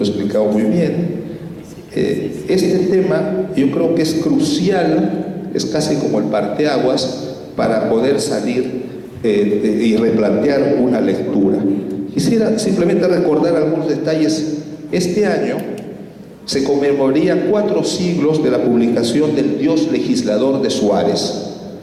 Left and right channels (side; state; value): both; identical; correlation 1.00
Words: muy bien. Este tema yo creo que es crucial, es casi como el parteaguas para poder salir y replantear una lectura. Quisiera simplemente recordar algunos detalles. Este año se conmemoraría 4 siglos de la publicación del Dios legislador de Suárez.